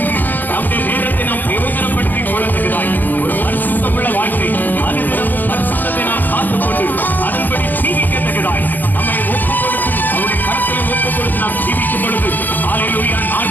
நம்முடைய நேரத்தை நாம் பிரயோஜனப்படுத்திக் கொள்ளுகிறாய். ஒரு பரிசுத்தமுள்ள வாழ்க்கை, அனுதினமும் பரிசுத்தத்தை நாம் காத்துக்கொண்டு அதன்படி ஜீவிக்கத்தக்கதாய் நம்மை ஒப்புக் கொடுத்து அவருடைய கரத்திலே ஒப்புக் கொடுத்து நாம் ஜீவிக்கும் பொழுது ஹல்லேலூயா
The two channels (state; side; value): late; right; 0.086 ms